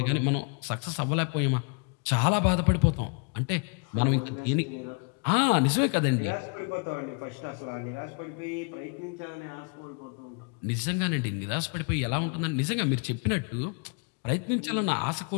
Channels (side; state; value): right; quieter; 36.1 dB